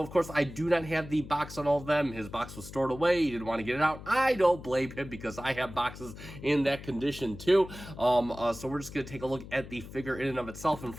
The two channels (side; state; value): left; noise; hum, 14 dB below the sound